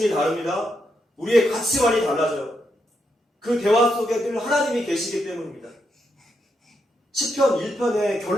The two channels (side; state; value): both; normal; correlation 0.81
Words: 다릅니다. 우리의 가치관이 달라져요. 그 대화 속에 늘 하나님이 계시기 때문입니다. 시편 1편의